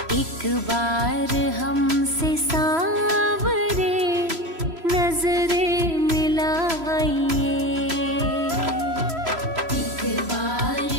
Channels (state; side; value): late; left; 3.0 ms